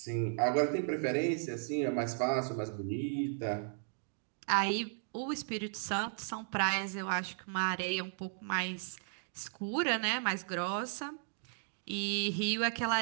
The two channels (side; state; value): left; silent; digital silence